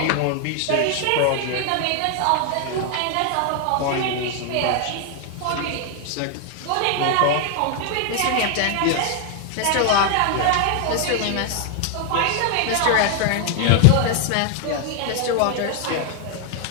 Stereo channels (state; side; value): different; both; correlation 0.00